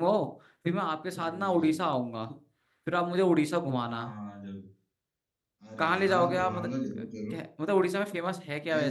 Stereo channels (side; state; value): both; identical; correlation 1.00